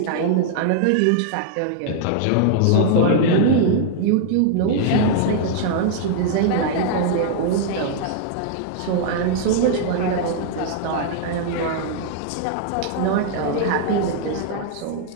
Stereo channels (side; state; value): both; different; correlation -0.01